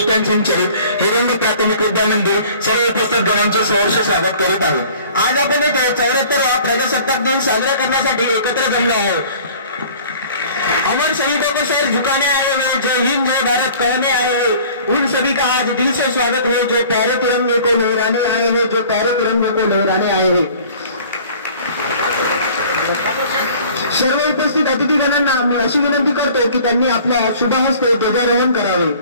संचालित हिरंग प्राथमिक विद्या मंदिर सर्व उपस्थित गणांचे सहर्ष स्वागत करीत आहे। आज आपण इथे 74वा प्रजासत्ताक दिन साजरा करण्यासाठी एकत्र जमलो आहोत। अमर शहीदों को सर झुकाने आए हैं, जय हिंद जय भारत कहने आए हैं, उन सभी का आज दिल से स्वागत है जो प्यारे तिरंगे को लहराने आए हैं, जो प्यारे तिरंगे को लहराने आए हैं। सर्व उपस्थित अतिथीगणांना मी अशी विनंती करतो की त्यांनी आपल्या शुभ हस्ते ध्वजारोहण करावे।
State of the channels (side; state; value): both; inverted; correlation -0.49